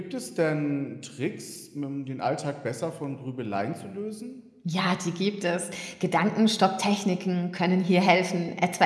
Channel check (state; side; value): identical; both; correlation 1.00